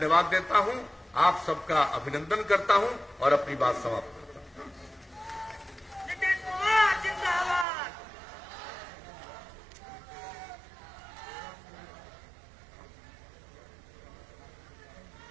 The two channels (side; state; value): left; drops out; at 7.7 s